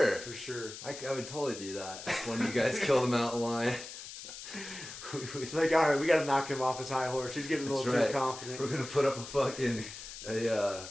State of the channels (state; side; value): noise; left; hiss, 12 dB below the sound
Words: For sure. I would totally do that. When you guys kill the mountain lion. It's like, all right, we got to knock him off his high horse. He's getting a little too confident. We're going to put up a fucking